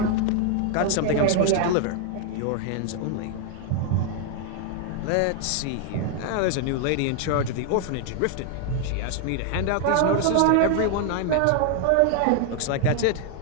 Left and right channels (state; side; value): different; both; correlation 0.00